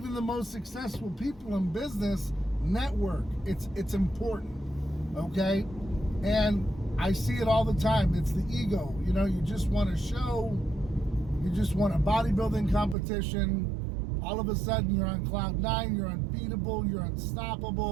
the most successful people in business network. It's important, okay? And I see it all the time. It's the ego. You just want to show. You just want a bodybuilding competition. All of a sudden, you're on cloud 9. You're unbeatable. You're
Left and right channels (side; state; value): left; drops out; at 13.0 s